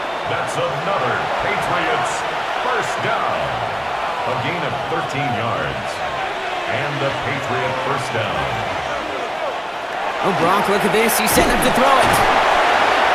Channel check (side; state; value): both; identical; correlation 1.00